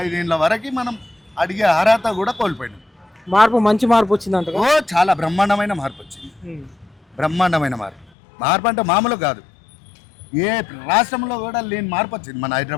5 ఏళ్ళ వరకు మనం అడిగే అర్హత కూడా కోల్పోయినాం. మార్పు మంచి మార్పు వచ్చిందంట. ఓ చాలా బ్రహ్మాండమైన మార్పు వచ్చింది. బ్రహ్మాండమైన మార్పు. మార్పు అంటే మామూలు కాదు. ఏ రాష్ట్రంలో కూడా లేని మార్పు వచ్చింది మన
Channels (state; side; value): drops out; right; at 8.1 s